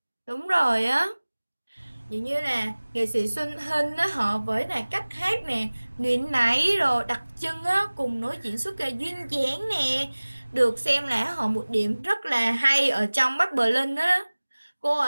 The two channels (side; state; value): both; inverted; correlation -1.00